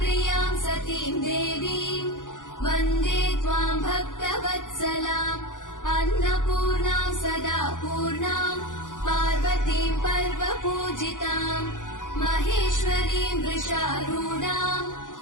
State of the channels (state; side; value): late; right; 0.88 ms